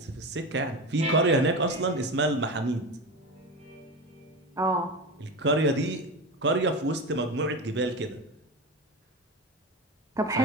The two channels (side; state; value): both; normal; correlation 0.23